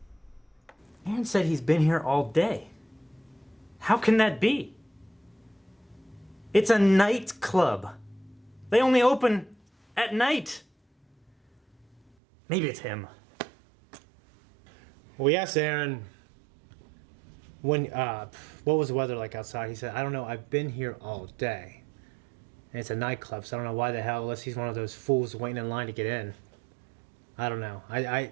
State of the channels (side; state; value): left; drops out; at 12.0 s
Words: Aaron said he's been here all day. How can that be? It's a nightclub. They only open at night. Maybe it's him. We asked Aaron when what was the weather like outside. He said, I don't know, I've been here all day. And it's a nightclub, so I don't know why the hell, unless he's one of those fools waiting in line to get in. I don't know. I